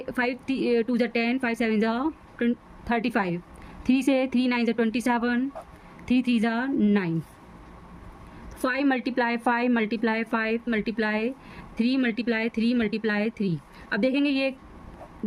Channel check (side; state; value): both; identical; correlation 1.00